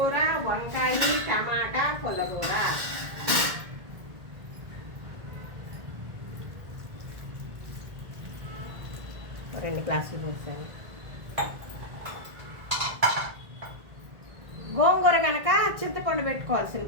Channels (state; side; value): late; left; 1.8 ms